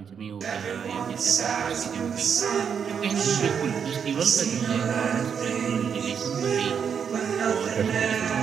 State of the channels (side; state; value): left; quieter; 7.2 dB